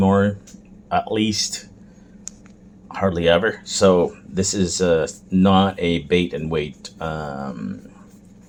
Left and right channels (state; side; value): identical; both; correlation 1.00